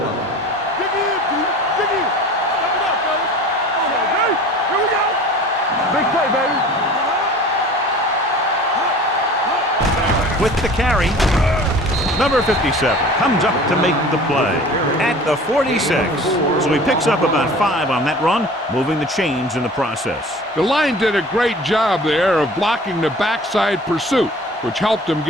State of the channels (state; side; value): normal; both; correlation 0.43